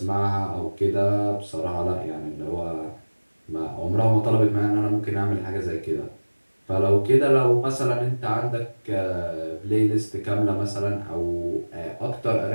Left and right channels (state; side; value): inverted; both; correlation -1.00